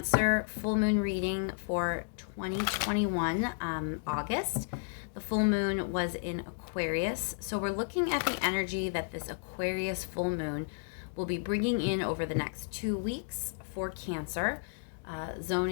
full moon reading for 2021, August. The full moon was in Aquarius, so we're looking at the energy that this Aquarius full moon will be bringing in over the next 2 weeks for Cancer,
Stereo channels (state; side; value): silent; right; digital silence